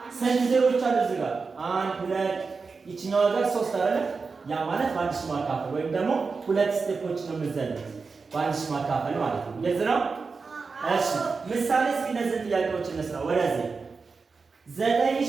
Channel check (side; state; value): left; quieter; 4.6 dB